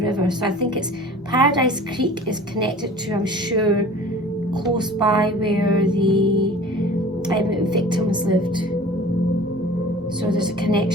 River. So I think it's Paradise Creek is connected to, I'm sure, close by where the victims lived. So there's a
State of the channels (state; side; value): normal; both; correlation 0.43